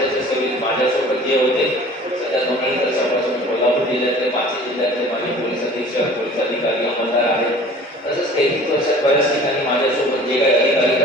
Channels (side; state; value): both; normal; correlation 0.46